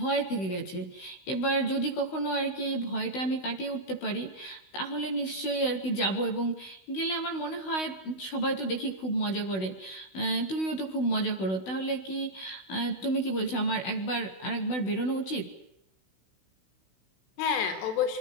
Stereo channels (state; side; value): late; right; 16 ms